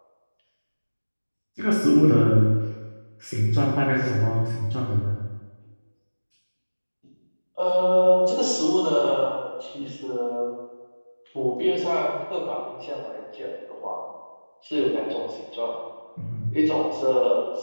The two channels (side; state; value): both; inverted; correlation -1.00